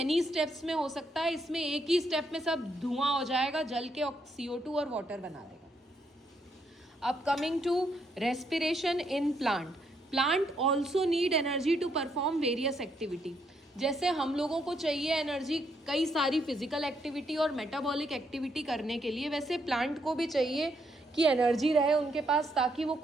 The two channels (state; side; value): normal; both; correlation 0.75